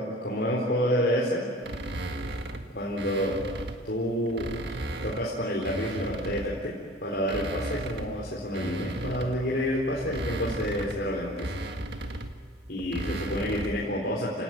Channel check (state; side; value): normal; both; correlation 0.44